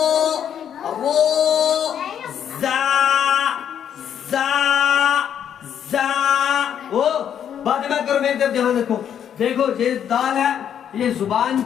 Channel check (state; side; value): quieter; right; 9.1 dB